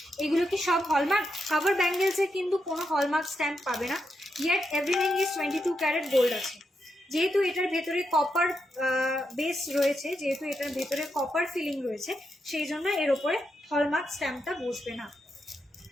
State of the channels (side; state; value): both; normal; correlation 0.84